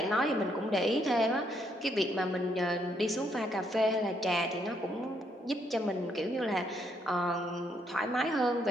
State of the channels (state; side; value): normal; both; correlation 0.73